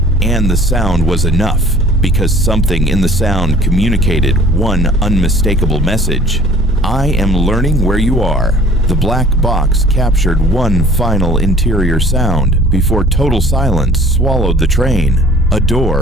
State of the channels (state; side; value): normal; both; correlation 0.50